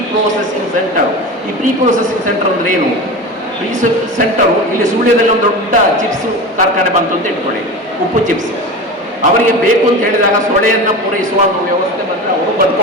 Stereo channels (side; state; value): both; normal; correlation 0.29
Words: ಪ್ರೊಸೆಸಿಂಗ್ ಸೆಂಟರ್. ಈ ಪ್ರೀ ಪ್ರೊಸೆಸಿಂಗ್ ಸೆಂಟರ್ ಅಂದ್ರೆ ಏನು? ಪ್ರೀ ಸೆಂಟರು ಇಲ್ಲಿ ಸುಳ್ಯದಲ್ಲಿ ಒಂದು ದೊಡ್ಡ ಚಿಪ್ಸ್ ಕಾರ್ಖಾನೆ ಬಂತು ಅಂತ ಇಟ್ಕೊಳ್ಳಿ, ಉಪ್ಪು ಚಿಪ್ಸ್. ಅವರಿಗೆ ಬೇಕು ಅಂತ ಹೇಳಿದಾಗ ಸೊಳೆಯನ್ನು ಪೂರೈಸುವ ಒಂದು ವ್ಯವಸ್ಥೆ ಬಂದರೆ ಅವರು